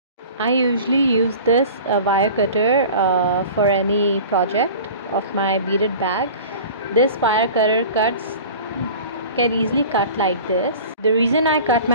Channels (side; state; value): both; inverted; correlation -0.40